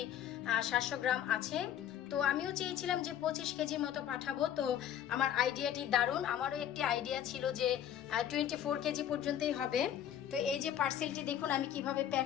700 গ্রাম আছে। তো আমিও চেয়েছিলাম যে 25 কেজির মতো পাঠাবো। তো আমার আইডিয়াটি দারুণ, আমারও একটি আইডিয়া ছিল যে 24 কেজি পর্যন্তই হবে। তো এই যে পার্সেলটি দেখুন আমি কিভাবে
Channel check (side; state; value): right; quieter; 10.3 dB